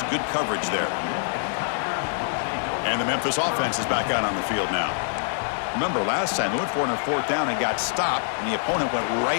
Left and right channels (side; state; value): right; silent; digital silence